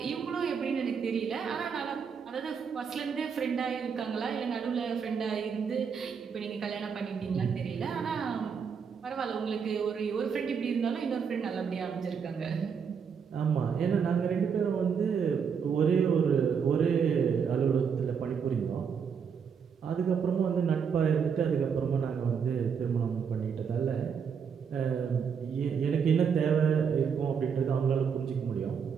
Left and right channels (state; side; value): quieter; left; 6.6 dB